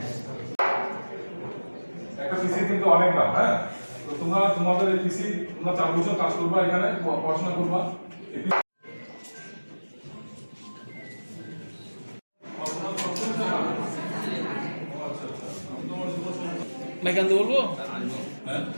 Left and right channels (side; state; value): both; inverted; correlation -1.00